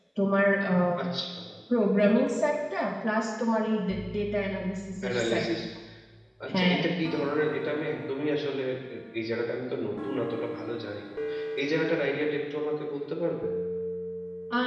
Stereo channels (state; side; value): identical; both; correlation 1.00